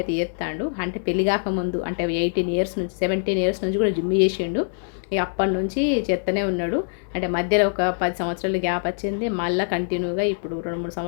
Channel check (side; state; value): right; silent; digital silence